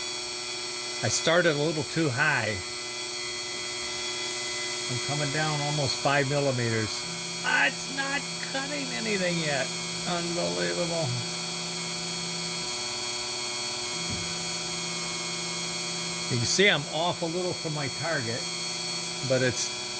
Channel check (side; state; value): both; identical; correlation 1.00